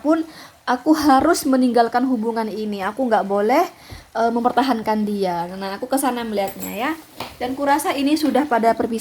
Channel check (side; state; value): both; identical; correlation 1.00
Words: aku harus meninggalkan hubungan ini, aku nggak boleh mempertahankan dia. Nah, aku kesana melihatnya ya. Dan kurasa ini sudah pada